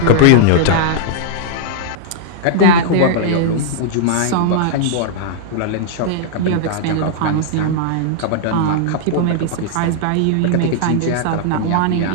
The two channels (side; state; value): both; different; correlation -0.01